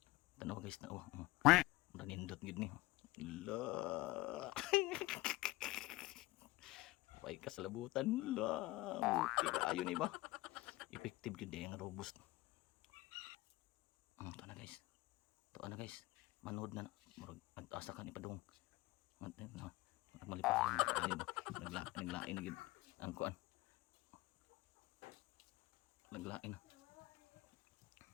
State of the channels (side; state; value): right; quieter; 19.9 dB